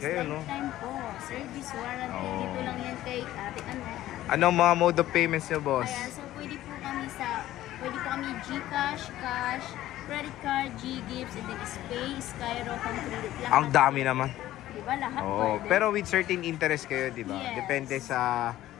kayo, no? lifetime po. Service warranty. Oo. Dito lang yan kay Ate Annette. Anong mga mode of payments nyo, boss? Ayan, so pwede po kami GCash, cash, credit card, G-Gifts, and then Spay, Skyro, Concredit. Lahat. Ang dami naman. Di ba? Lahat Oo, pwede. pero with certain interest kayo, di ba? Yes. Depende sa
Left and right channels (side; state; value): right; quieter; 14.4 dB